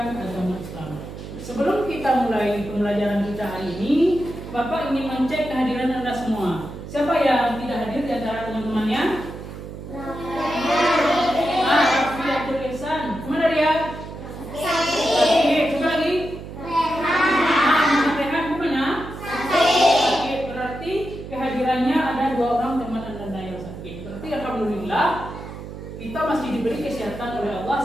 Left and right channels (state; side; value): noise; right; hum, 11 dB below the sound